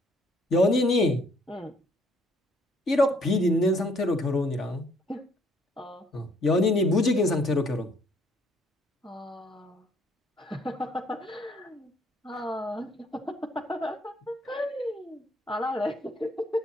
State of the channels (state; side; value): normal; both; correlation 0.64